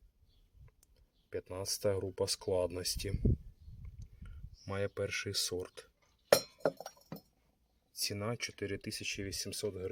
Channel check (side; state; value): both; identical; correlation 1.00